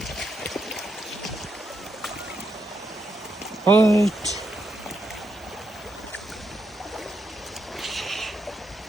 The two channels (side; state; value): both; normal; correlation 0.81